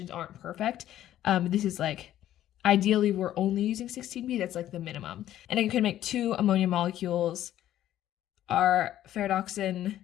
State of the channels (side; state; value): right; quieter; 12.5 dB